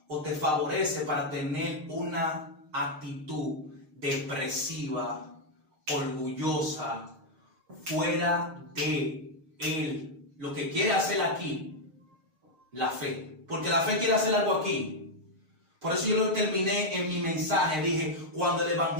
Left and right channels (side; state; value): left; late; 6.5 ms